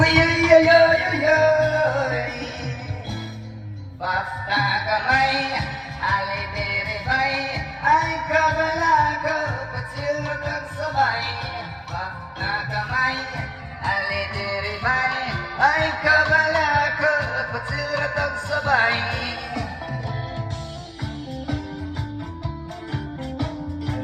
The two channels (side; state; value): both; identical; correlation 1.00